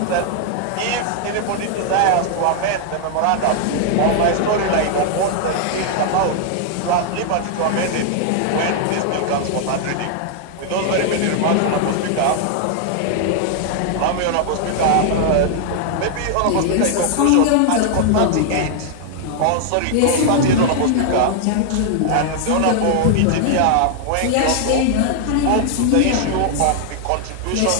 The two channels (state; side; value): different; both; correlation 0.00